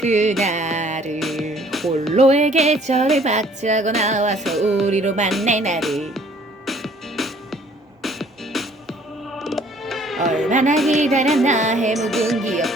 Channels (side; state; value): both; normal; correlation 0.58